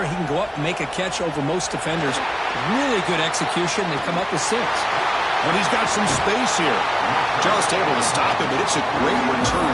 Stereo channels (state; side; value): identical; both; correlation 1.00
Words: He can go up and make a catch over most defenders. Really good execution. They come up with 6. But he's got some space here. Just able to stop it, but it's a great return,